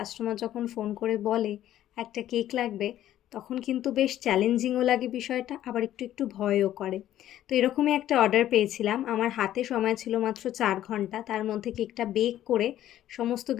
যখন ফোন করে বলে একটা কেক লাগবে, তখন কিন্তু বেশ চ্যালেঞ্জিংও লাগে বিষয়টা, আবার একটু ভয়ও করে। তো এরকমই একটা অর্ডার পেয়েছিলাম। আমার হাতে সময় ছিল মাত্র ৪ ঘন্টা। তার মধ্যে কেকটা বেক করে সমস্ত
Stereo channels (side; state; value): right; quieter; 12.5 dB